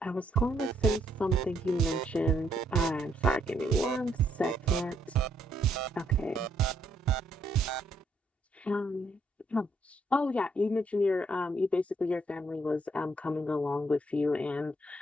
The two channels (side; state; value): both; normal; correlation 0.72